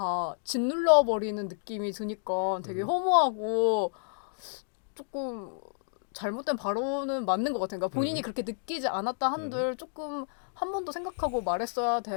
짓눌러 버리는 느낌이 드니까 되게 허무하고 조금 잘못된 발언은 맞는 것 같아요. 그러니까 본인이 그렇게 느끼지 않았다 한들 조금 한 번 더 생각하고 말했어야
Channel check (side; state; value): right; silent; digital silence